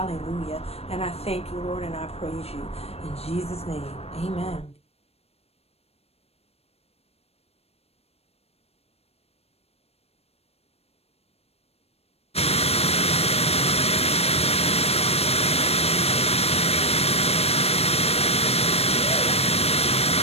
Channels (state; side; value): late; right; 0.29 ms